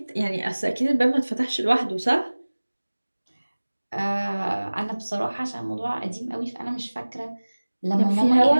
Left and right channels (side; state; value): both; inverted; correlation -1.00